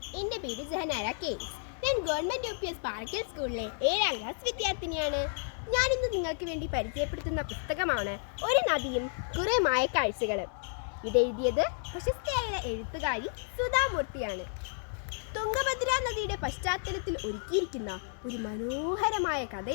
എൻ്റെ പേര് ജഹനാര കെ. ഞാൻ ഗവൺമെൻറ് UPS പാറക്കൽ സ്കൂളിലെ 7ാം ക്ലാസ് വിദ്യാർത്ഥിനിയാണ്. ഞാനിന്ന് നിങ്ങൾക്ക് വേണ്ടി പരിചയപ്പെടുത്തുന്ന പുസ്തകമാണ് ഒരു നദിയും കുറേ മായക്കാഴ്ചകളും. ഇതെഴുതിയത് പ്രശസ്തയായ എഴുത്തുകാരി സുധാമൂർത്തിയാണ്. തുംഗഭദ്ര നദിയുടെ പശ്ചാത്തലത്തിൽ ഒരുക്കിയിരിക്കുന്ന ഒരു മനോഹരമായ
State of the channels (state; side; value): silent; right; digital silence